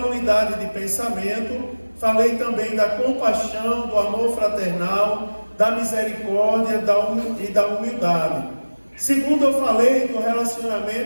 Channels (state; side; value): inverted; both; correlation -1.00